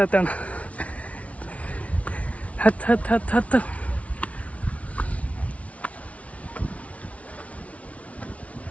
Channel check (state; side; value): late; right; 0.065 ms